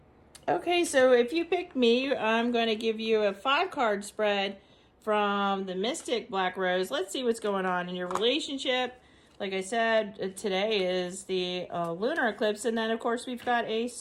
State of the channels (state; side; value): identical; both; correlation 1.00